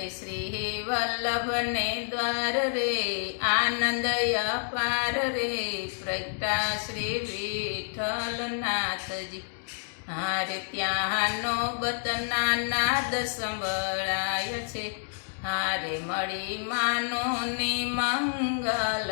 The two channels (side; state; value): right; silent; digital silence